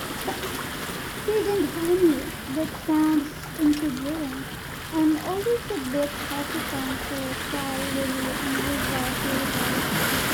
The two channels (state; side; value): identical; both; correlation 1.00